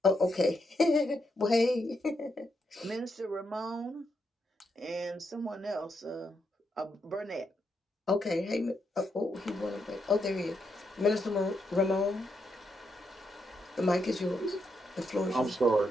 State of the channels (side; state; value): both; normal; correlation 0.81